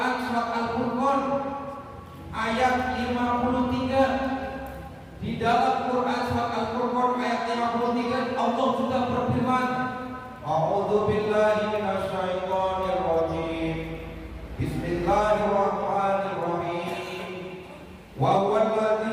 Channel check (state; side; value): identical; both; correlation 1.00